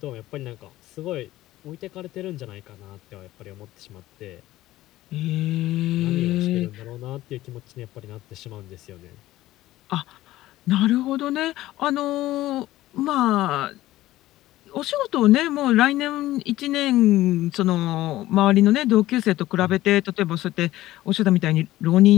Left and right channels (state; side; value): quieter; right; 15.8 dB